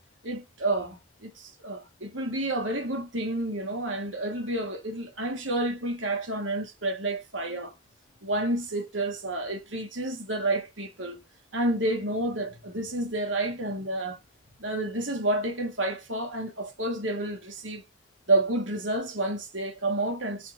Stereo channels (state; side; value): normal; both; correlation -0.12